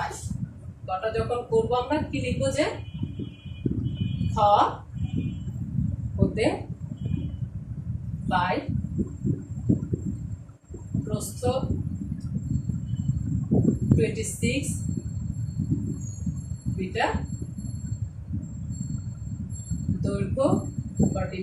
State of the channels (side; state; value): both; identical; correlation 1.00